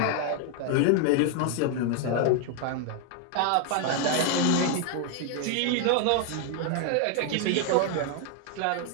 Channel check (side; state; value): both; different; correlation 0.00